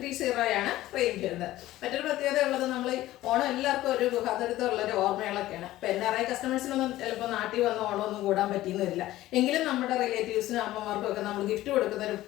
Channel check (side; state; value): right; quieter; 15.7 dB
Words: ആണ് റേഞ്ച് വരുന്നത്. മറ്റൊരു പ്രത്യേകത ഉള്ളത്, നമ്മൾ ഓണം എല്ലാവർക്കും ഒരു ഗുഹാതരത്തുള്ളൊരു ഓർമ്മകളൊക്കെയാണ്. ഇപ്പം NRI കസ്റ്റമേഴ്സിനൊന്നും ചിലപ്പോൾ നാട്ടിൽ വന്ന് ഓണമൊന്നും കൂടാൻ പറ്റിയെന്ന് വരില്ല. എങ്കിലും നമ്മുടെ റിലേറ്റീവ്സിനും അമ്മമാർക്കും ഒക്കെ നമ്മൾ ഗിഫ്റ്റ് കൊടുക്കുന്ന ഒരു